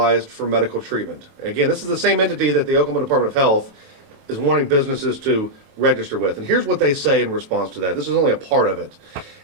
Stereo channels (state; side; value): late; left; 27 ms